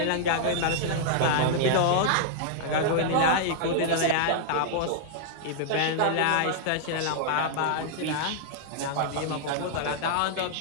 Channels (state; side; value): different; both; correlation -0.01